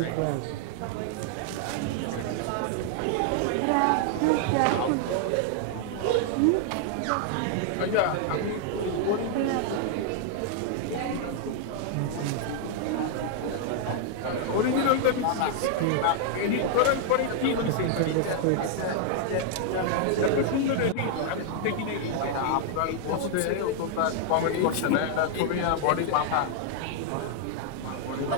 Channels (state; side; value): different; both; correlation 0.00